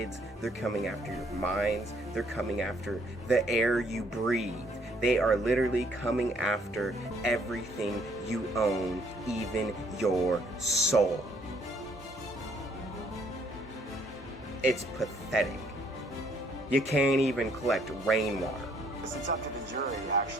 They're coming after your minds. They're coming after the air you breathe. They are literally coming after everything you own, even your soul. It's pathetic. You can't even collect rainwater. It's up to the jury,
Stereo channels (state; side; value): normal; both; correlation 0.66